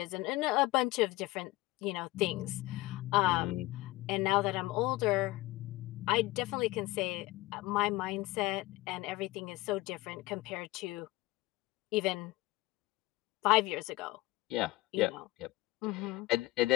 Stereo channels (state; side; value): quieter; right; 19.5 dB